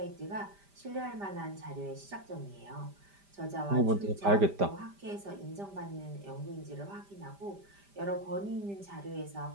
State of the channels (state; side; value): late; left; 5.0 ms